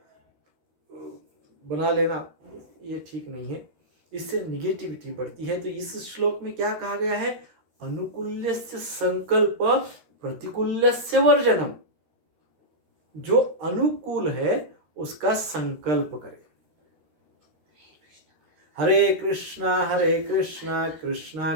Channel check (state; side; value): late; left; 13 ms